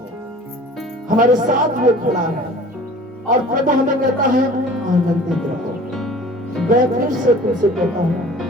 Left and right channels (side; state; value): both; normal; correlation 0.45